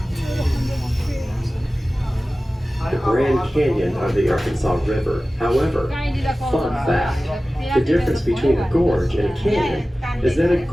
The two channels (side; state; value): both; normal; correlation 0.96